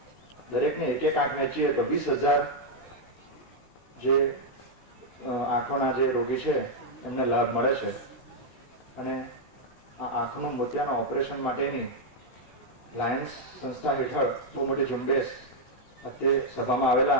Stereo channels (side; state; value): right; late; 16 ms